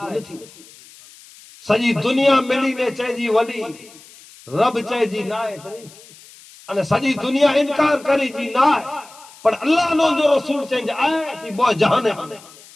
تو نہیں تھی سجی دنیا ملی نے چاہے جی ولی رب چاہے جی نہ ہے تو نہیں تھی سجی دنیا انکار کری جی نہ ہے پر اللہ نے جو رسول چاہیں جی آئے تھی بہت جہانے ہونے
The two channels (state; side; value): noise; left; hiss, 22 dB below the sound